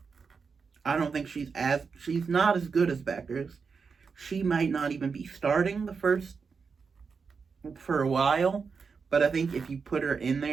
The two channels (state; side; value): quieter; left; 5.4 dB